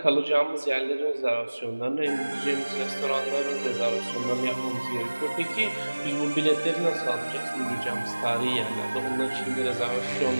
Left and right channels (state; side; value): inverted; both; correlation -1.00